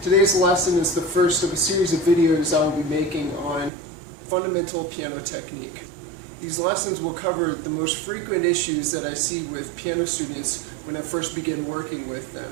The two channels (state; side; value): drops out; left; at 3.7 s